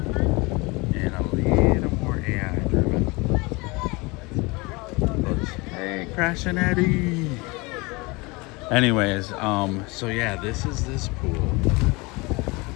a little more AI driven. Looks, hey, Crash and Edy. Anyways, so yeah, this is this pool.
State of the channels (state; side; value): quieter; right; 25.5 dB